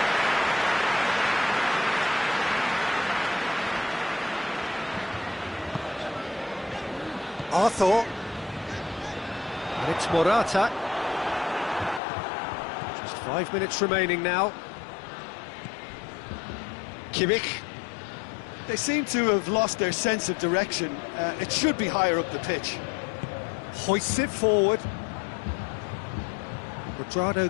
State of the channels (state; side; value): drops out; right; at 12.0 s